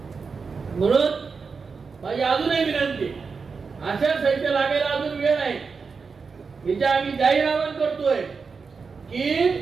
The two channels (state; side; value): quieter; left; 5.1 dB